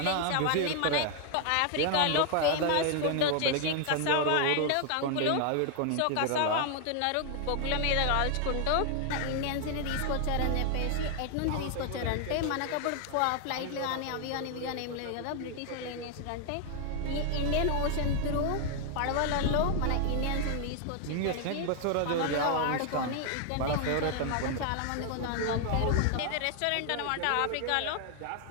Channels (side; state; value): both; different; correlation 0.00